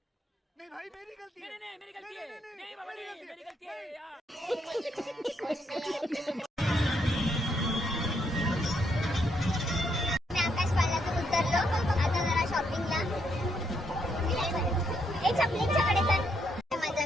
नहीं भाई मेरी गलती है. नहीं मेरी गलती है. नहीं बाबा नहीं मेरी गलती है यार. आकाश पाळण्यातून उतरलो. आता जरा शॉपिंगला. एक चपलींच्याकडे तर मजा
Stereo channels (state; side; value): normal; both; correlation 0.76